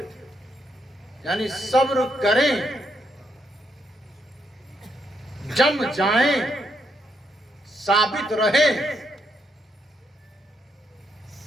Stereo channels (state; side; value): normal; both; correlation 0.77